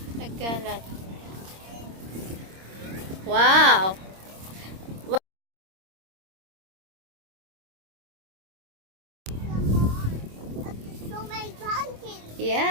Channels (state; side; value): late; left; 26 ms